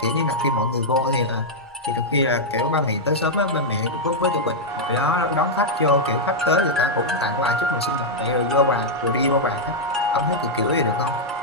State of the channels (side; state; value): both; normal; correlation -0.05